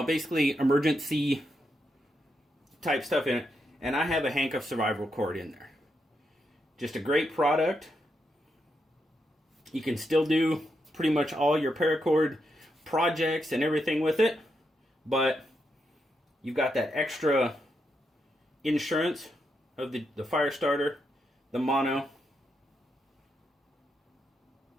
emergency type stuff in it. And I have a hank of SurvivorCord in there. Just a great product. You can still do pretty much all your paracord projects and everything with it, but you've got that extra insurance of the fire starter, the mono,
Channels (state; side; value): normal; both; correlation 0.82